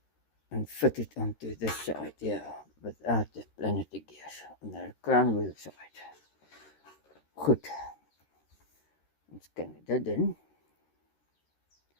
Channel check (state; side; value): late; right; 13 ms